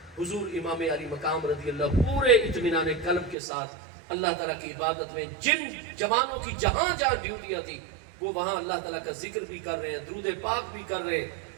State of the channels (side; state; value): left; drops out; at 3.4 s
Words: حضور امام علی مقام رضی اللہ پورے اطمینان قلب کے ساتھ اللہ تعالیٰ کی عبادت میں، جن جوانوں کی جہاں جہاں ڈیوٹیاں تھی وہ وہاں اللہ تعالیٰ کا ذکر بھی کر رہے ہیں، درود پاک بھی کر رہے ہیں،